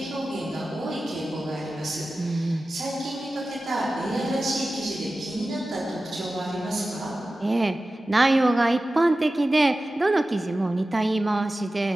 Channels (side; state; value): both; normal; correlation 0.95